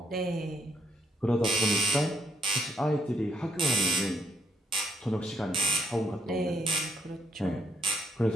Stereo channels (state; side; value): normal; both; correlation 0.74